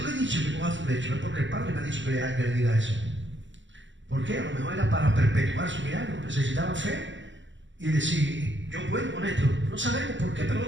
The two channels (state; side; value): late; left; 0.54 ms